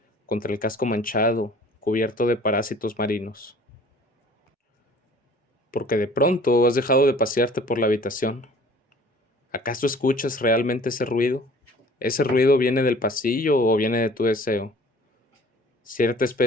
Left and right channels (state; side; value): normal; both; correlation 0.50